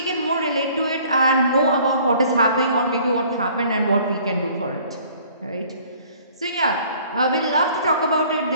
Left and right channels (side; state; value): both; inverted; correlation -0.55